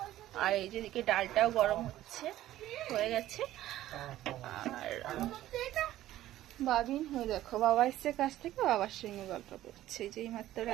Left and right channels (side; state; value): left; quieter; 14.1 dB